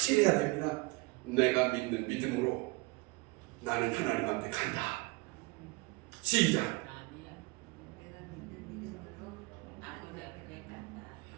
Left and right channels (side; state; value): left; quieter; 24.7 dB